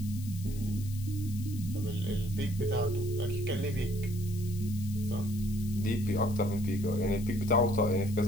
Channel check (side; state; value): left; noise; hiss, 17 dB below the sound